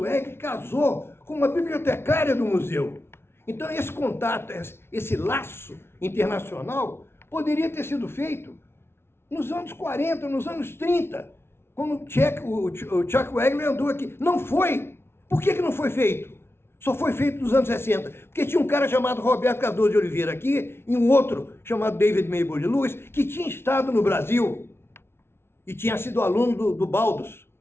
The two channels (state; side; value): late; right; 0.12 ms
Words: casou com uma bibliotecária do museu. Então, esse contato, esse laço internacional, poderia ter sido feito nos anos 40, nos anos 30, quando o Chuck Wegler andou aqui. Não foi. Por que não foi feito? Só foi feito nos anos 60. Porque tinha um cara chamado Roberto Cardoso de Oliveira aqui, e um outro chamado David Maybole Lewis, que tinha estado no Brasil e tinha sido aluno do Baldus.